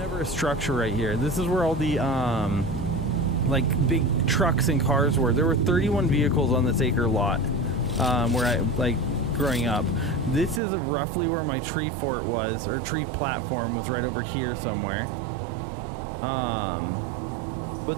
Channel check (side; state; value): left; drops out; at 10.6 s